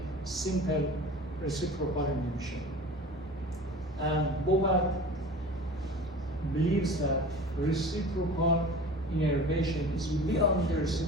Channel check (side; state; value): both; normal; correlation 0.39